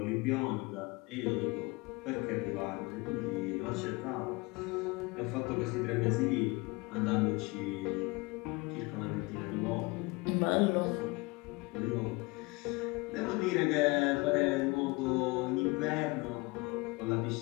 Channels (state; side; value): quieter; right; 25.0 dB